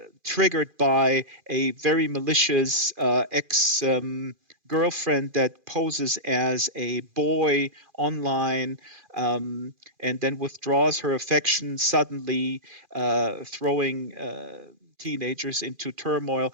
triggered by a very malicious ex girlfriend that poses as a boy online, and then withdraws her affection suddenly, throwing teenagers into turmoil.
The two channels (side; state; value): left; late; 2.4 ms